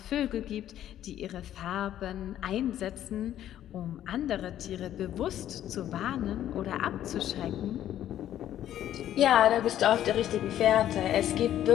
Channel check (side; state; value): right; quieter; 11.7 dB